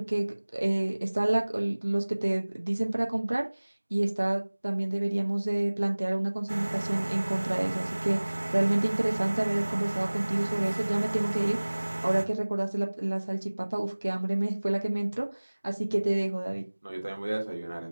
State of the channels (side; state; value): both; inverted; correlation -1.00